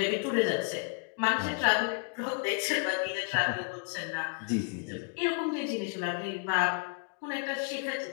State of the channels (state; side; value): quieter; right; 34.4 dB